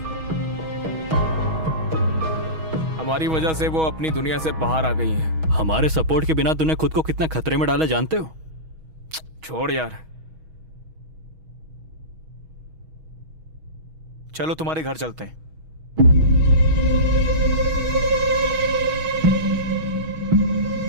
हमारी वजह से वो अपनी दुनिया से बाहर आ गई हैं। हमारे सपोर्ट के बिना तूने खुद को कितना खतरे में डाला जानते हो? छोड़ यार। चलो तुम्हारे घर चलते हैं।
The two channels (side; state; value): left; late; 6.3 ms